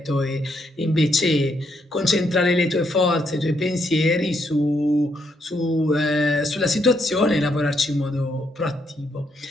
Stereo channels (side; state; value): both; normal; correlation 0.76